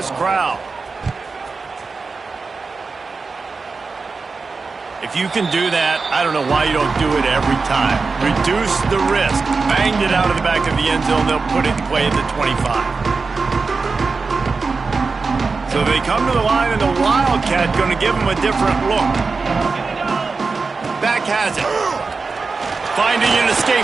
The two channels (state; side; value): quieter; left; 4.4 dB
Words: crowd. If you can do that, I don't know why you don't do it every time. Reduce the risk. Banged it out of the back of the end zone. They'll put it in play at the 25. So they come to the line, and the Wildcat going to give them a different look. Back has it. Finding an escape